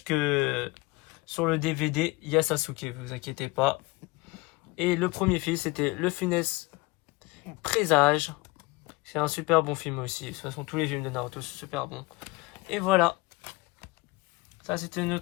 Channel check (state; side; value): quieter; right; 23.3 dB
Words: sur le DVD, il y a Sasuke, vous inquiétez pas. Et le premier film, c'était Le Funeste Présage. C'est un super bon film aussi. De toute façon, tous les films de Naruto sont super bons. Et voilà. Ça, c'était